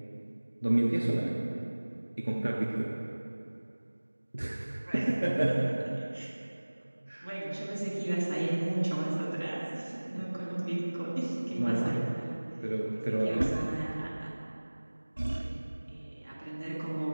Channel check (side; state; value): both; inverted; correlation -1.00